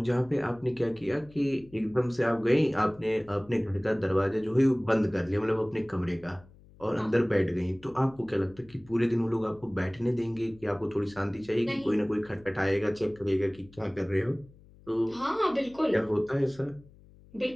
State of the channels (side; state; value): left; noise; hum, 24 dB below the sound